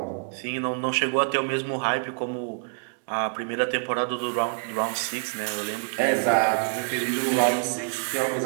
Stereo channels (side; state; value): left; silent; digital silence